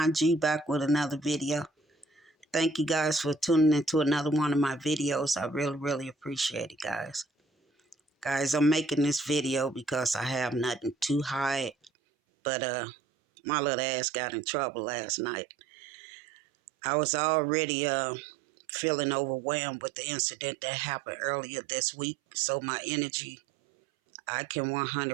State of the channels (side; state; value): left; drops out; at 11.9 s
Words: G back with another video. Thank you guys for tuning into another one of my videos. I really appreciate it, guys. Guys, I'm making this video because I have nothing to hide, but my little ass got in trouble last night. I was already feeling overwhelmed with the incident that happened earlier this week, so my energy, I can